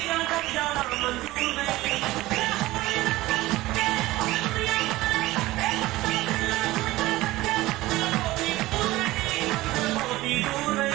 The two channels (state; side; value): quieter; left; 18.1 dB